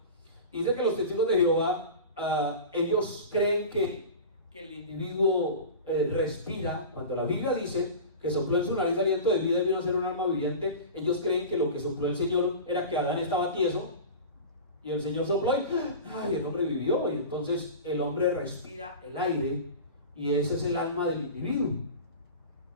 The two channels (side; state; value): both; inverted; correlation -0.32